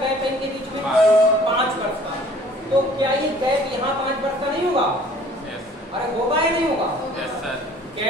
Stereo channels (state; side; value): normal; both; correlation 0.53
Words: है इनके बीच में? 5 वर्ष का। तो क्या ये गैप यहाँ 5 वर्ष का नहीं होगा? अरे होगा या नहीं होगा?